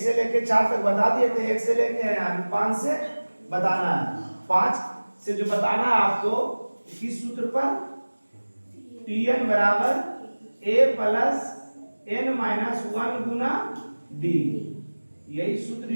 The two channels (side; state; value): both; inverted; correlation -1.00